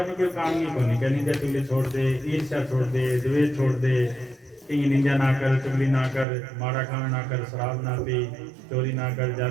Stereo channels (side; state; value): left; drops out; at 6.2 s